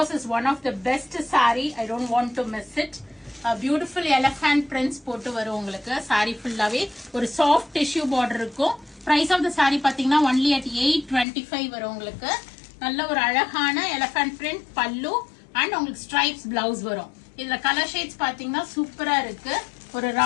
it's one of the best sari. I don't want to miss it. Beautiful elephant prints போட்டு வரும் உங்களுக்கு. சாரி ஃபுல்லாவே ஒரு சாஃப்ட் டிஷ்யூ பார்டர் இருக்கும். பிரைஸ் ஆஃப் த சாரி பாத்தீங்கன்னா ஒன்லி அட் 825 வரும் உங்களுக்கு. நல்ல ஒரு அழகான எலஃபண்ட் பிரிண்ட் பல்லு அண்ட் உங்களுக்கு ஸ்ட்ரைப்ஸ் பிளவுஸ் வரும். இதுல கலர் ஷேட்ஸ் பாத்தீங்கன்னா சூப்பரா இருக்கு. ஒரு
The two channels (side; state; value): right; drops out; at 11.2 s